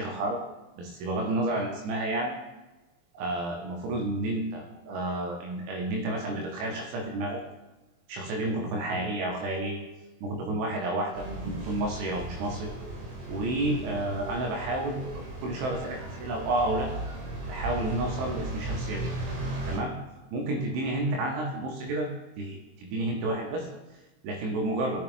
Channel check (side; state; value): left; late; 23 ms